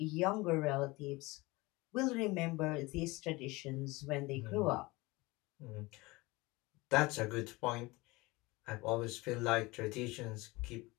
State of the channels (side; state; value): right; quieter; 22.6 dB